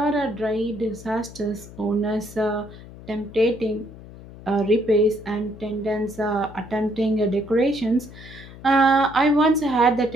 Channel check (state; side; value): noise; left; hum, 17 dB below the sound